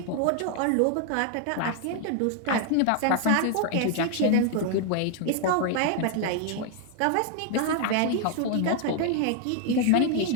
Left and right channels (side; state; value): both; different; correlation 0.00